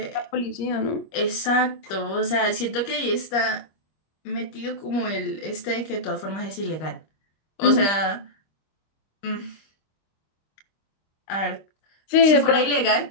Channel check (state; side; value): late; right; 25 ms